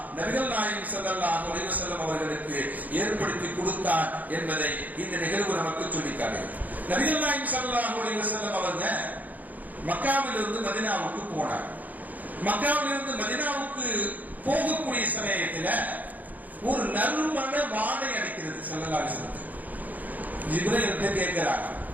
நபிகள் நாயகம் ஸல்லல்லாஹு அலைஹி வஸல்லம் அவர்களுக்கு ஏற்படுத்தி கொடுத்தார் என்பதை இந்த நிகழ்வு நமக்கு சொல்லிக்காட்டுகிறது. நபிகள் நாயகம் ஸல்லல்லாஹு அலைஹி வஸல்லம் அவங்க மக்காவிலிருந்து மதீனாவுக்கு போனார். மக்காவிலிருந்து மதீனாவுக்கு போகக்கூடிய சமயத்தில் ஒரு நறுமண வாடை அடிக்கிறது. ஸல்லல்லாஹு அலைஹி வஸல்லம் ஜிப்ரீல் கேட்கிறாங்க,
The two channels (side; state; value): left; late; 0.080 ms